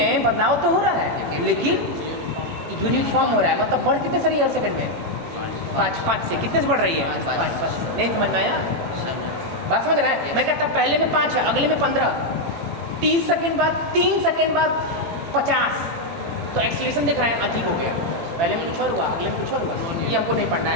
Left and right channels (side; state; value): left; late; 18 ms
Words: बदलाव तो हो रहा है, लेकिन यूनिफॉर्म हो रहा है। मतलब बढ़ कितने से रही है हर सेकंड में? 5 से। कितने से बढ़ रही है? 5 से। नहीं समझ में आया? बात समझ रहा है? मैं कहता पहले में 5 है, अगले में 15, 30 सेकंड बाद, 3 सेकंड बाद 50, तो एक्सेलरेशन देख रहे हैं, अजीब हो गया। पहले में कुछ और हुआ, अगले में कुछ और हुआ, ये हमको नहीं पढ़ना